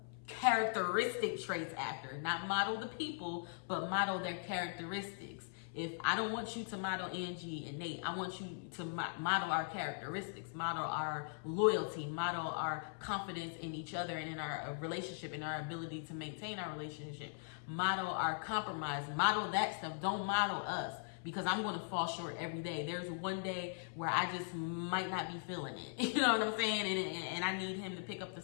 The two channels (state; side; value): silent; right; 51 dB below the other